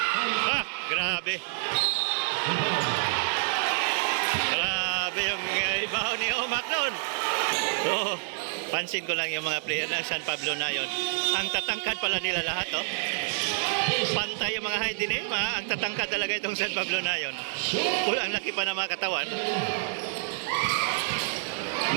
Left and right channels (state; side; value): silent; left; 58 dB below the other